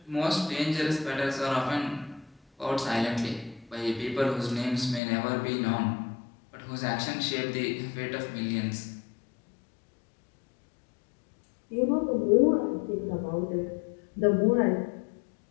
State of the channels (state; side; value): drops out; right; at 5.0 s